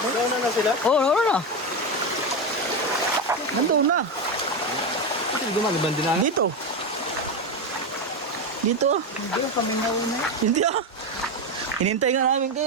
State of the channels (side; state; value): both; normal; correlation 0.13